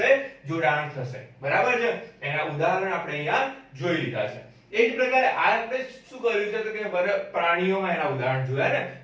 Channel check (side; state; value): both; identical; correlation 1.00